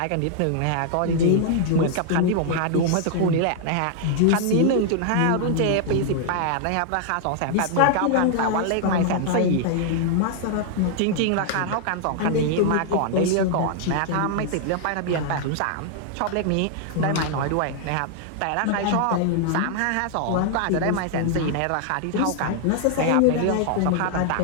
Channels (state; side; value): different; both; correlation 0.00